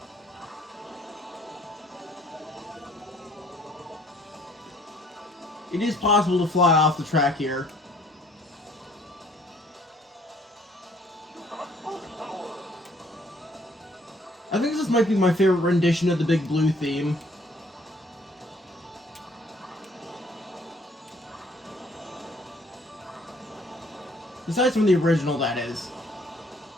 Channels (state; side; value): normal; both; correlation 0.61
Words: It is possible to fly off the track here. I think this might be my favorite rendition of the Big Blue theme. Besides from the original, that is.